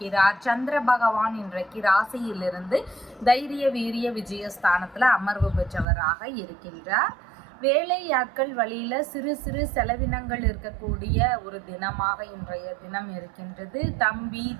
சந்திர பகவான் இன்றைக்கு ராசியிலிருந்து தைரிய வீரிய விஜயஸ்தானத்தில் அமர்வு பெற்றவராக இருக்கின்றார். வேலையாட்கள் வழியில சிறு சிறு செலவினங்கள் இருக்கக்கூடிய ஒரு தினமாக இன்றைய தினம் இருக்கின்றது. தம்பி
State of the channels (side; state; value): left; drops out; at 5.9 s